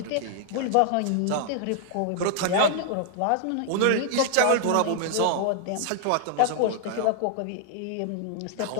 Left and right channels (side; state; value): both; different; correlation -0.01